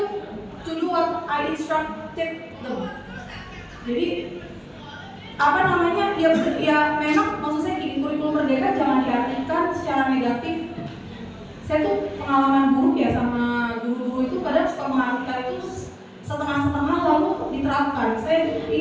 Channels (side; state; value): both; identical; correlation 1.00